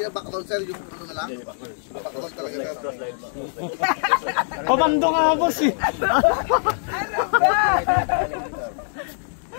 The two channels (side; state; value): right; silent; 60 dB below the other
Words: na backdoor sir, yung ano na lang? Backdoor talaga sir. Komando nga boss eh.